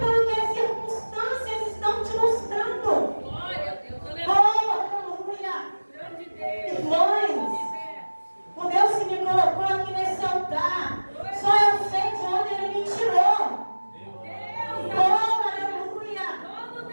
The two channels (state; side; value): inverted; both; correlation -1.00